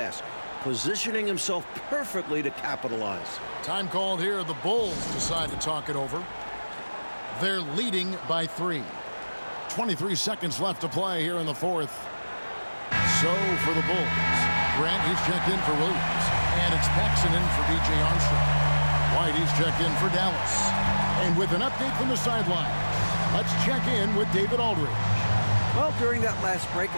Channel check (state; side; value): inverted; both; correlation -1.00